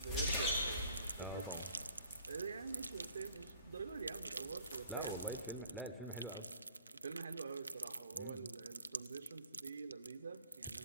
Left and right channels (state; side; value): inverted; both; correlation -0.56